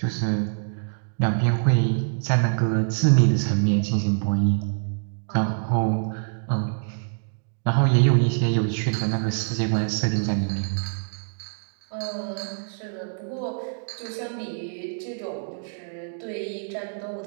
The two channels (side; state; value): left; silent; digital silence